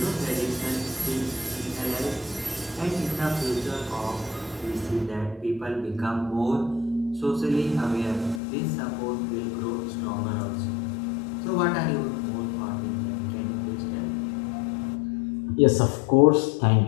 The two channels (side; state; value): right; drops out; at 8.4 s